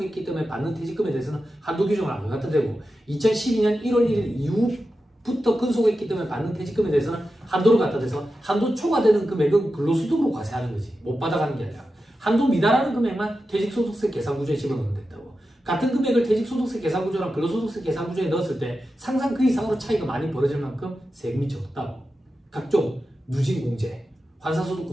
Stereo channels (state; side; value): normal; both; correlation 0.91